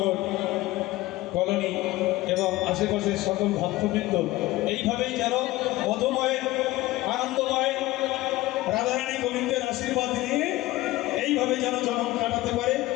কলোনি এবং আশেপাশের সকল ভক্তবৃন্দ এইভাবেই যেন মধুময় আনন্দময় রাধারানী গোবিন্দের আশীর্বাদ নিয়ে এইভাবে যেন জন্ম কাটাতে পারে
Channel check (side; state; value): right; quieter; 18.0 dB